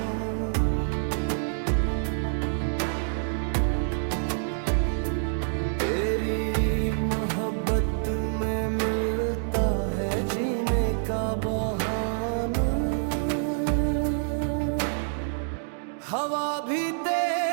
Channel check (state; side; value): silent; left; digital silence